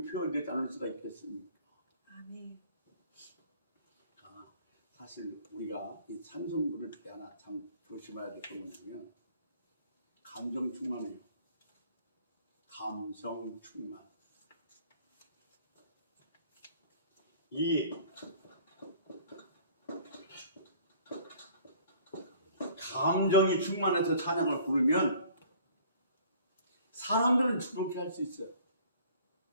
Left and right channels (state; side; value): inverted; both; correlation -0.53